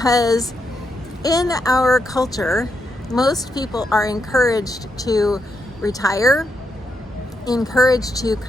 in our culture, most people are encouraged to retire, encouraged to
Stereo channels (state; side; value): normal; both; correlation 0.82